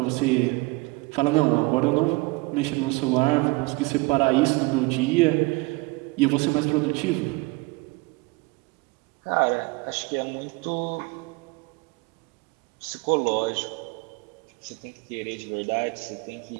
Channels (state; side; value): quieter; left; 25.3 dB